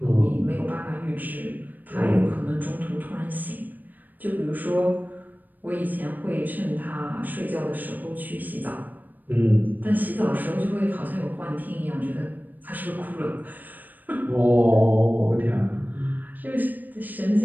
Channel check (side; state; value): left; late; 0.086 ms